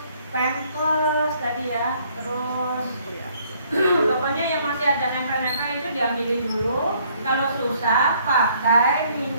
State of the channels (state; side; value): inverted; both; correlation -0.64